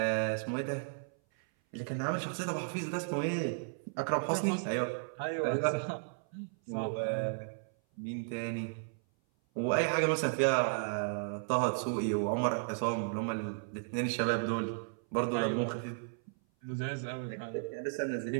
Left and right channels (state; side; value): silent; left; 55 dB below the other